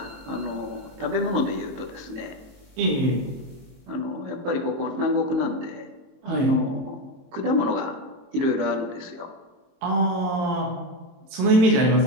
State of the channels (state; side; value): late; left; 22 ms